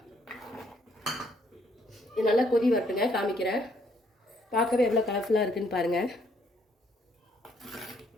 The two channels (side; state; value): both; normal; correlation 0.68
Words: இது நல்லா கொதி வரட்டுங்க, காமிக்கிறேன். பார்க்கவே எவ்வளோ கலர்ஃபுல்லாக இருக்குதுன்னு பாருங்கள்.